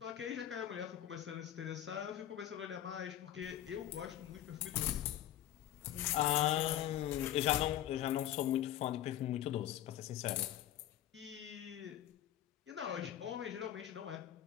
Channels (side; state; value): right; quieter; 12.0 dB